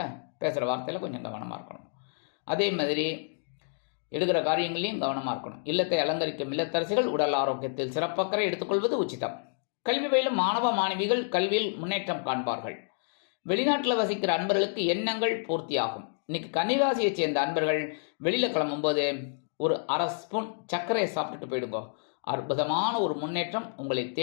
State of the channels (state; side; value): silent; right; digital silence